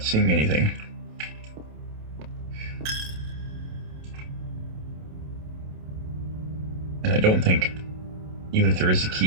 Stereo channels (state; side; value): late; left; 27 ms